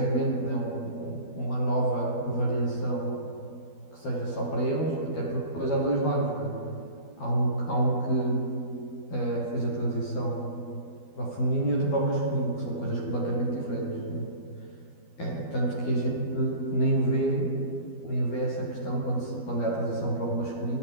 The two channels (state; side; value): late; right; 12 ms